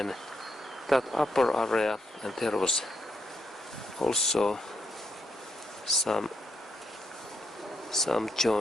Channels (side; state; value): both; normal; correlation 0.78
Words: that upper area, and there was also some